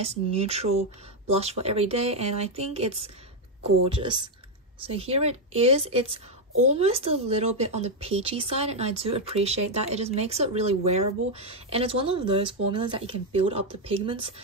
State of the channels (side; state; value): both; normal; correlation 0.03